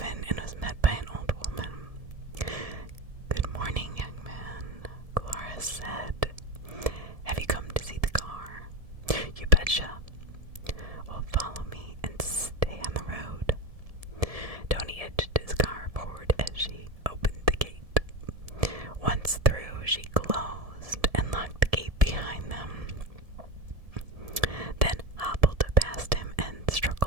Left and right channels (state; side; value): late; left; 1.7 ms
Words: and was met by an old woman. "Good morning, young man," Dolores said. "Have you come to see the car?" "You betcha." "Well, follow me and stay on the road." Tony edged his car forward as she opened the gate. Once through, she closed and locked the gate behind them, then hobbled past him and